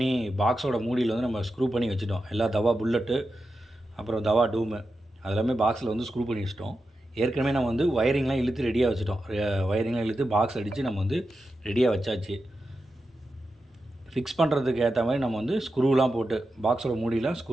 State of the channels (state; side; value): normal; both; correlation 0.90